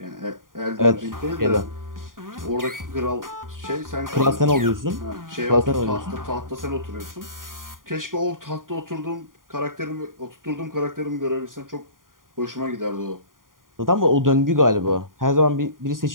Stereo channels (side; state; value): left; late; 0.90 ms